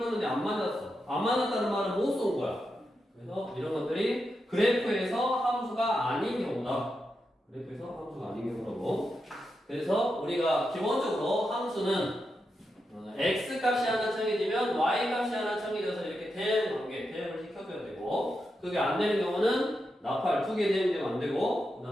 안 만났어. 안 만났다는 말은 못 쏜 거야. 그래서 이런 것들이 그래프에서 함수가 아닌 경우다. 그래프에서 함수가 아닌 경우라고. 그래서 우리가 기본적으로 함수는 x 값이 하나 정해지면 y 값이 하나 정해져서 이렇게 대응 관계, 대응을 시켜줘야 되고, 그게 안 되는 경우는 나팔 두 개 대응되면 안 되고, 그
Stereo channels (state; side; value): normal; both; correlation 0.87